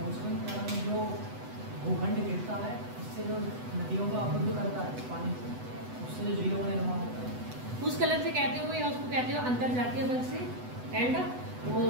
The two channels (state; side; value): late; left; 8.0 ms